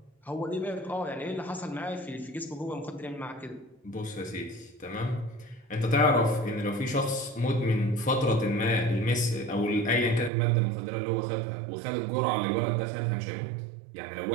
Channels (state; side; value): drops out; left; at 10.3 s